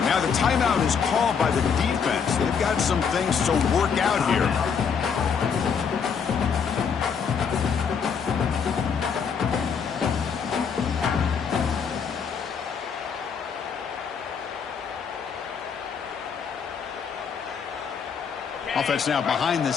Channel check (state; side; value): quieter; right; 6.5 dB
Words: Now the timeout is called by the defense. They've got some things to work out here. Offense now behind the